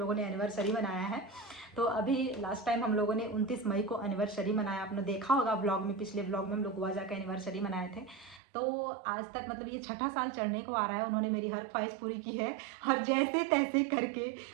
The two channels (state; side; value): drops out; left; at 8.4 s